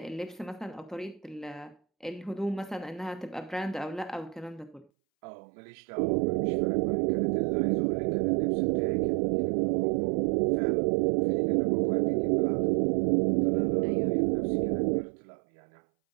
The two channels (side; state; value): left; drops out; at 4.9 s